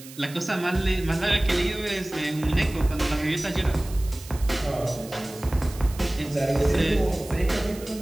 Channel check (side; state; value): right; noise; hiss, 17 dB below the sound